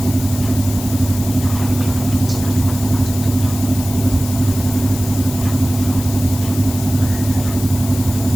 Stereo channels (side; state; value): left; noise; hiss, 11 dB below the sound